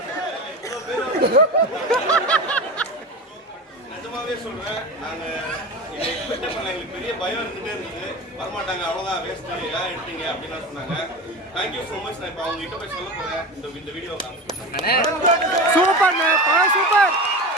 நிஜமாவே சொல்றேன், நாங்க எக்ஸ்பெக்ட் பண்ணல, எங்களுக்கு பெரிய பயம் இருந்துட்டே இருந்தது, வரமாட்டாங்க அவ்வளவுதான் வேஸ்ட் ஏன் எடுத்தீங்க அப்படின்னு சொன்னாங்க. Thank you so much. நான் இப்போ அவங்க கிட்ட போய் சொல்ல போறேன் இந்த வீடியோ. Super super.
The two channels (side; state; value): both; normal; correlation 0.27